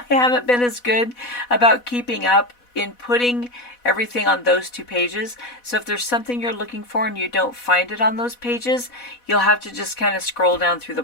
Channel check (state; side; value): late; right; 4.1 ms